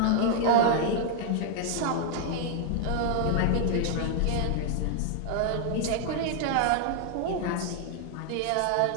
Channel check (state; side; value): different; both; correlation 0.00